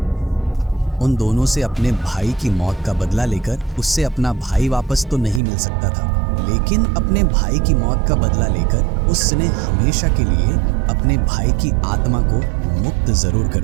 उन दोनों से अपने भाई की मौत का बदला लेकर उससे अपना भाई वापस तो नहीं मिल सकता था, लेकिन अपने भाई की मौत का बदला लेकर उसने हमेशा के लिए अपने भाई की आत्मा को मुक्त जरूर कर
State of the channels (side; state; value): left; drops out; at 5.4 s